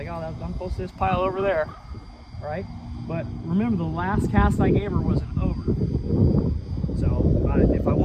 oh, I'm close to this pile over there, right? But remember, the last cast I gave her was an over. So if I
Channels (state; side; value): identical; both; correlation 1.00